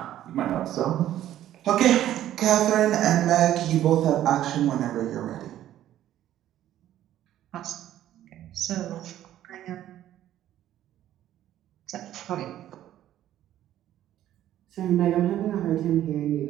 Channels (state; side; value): quieter; left; 12.4 dB